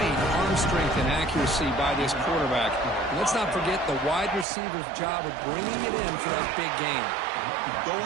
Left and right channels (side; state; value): left; drops out; at 4.5 s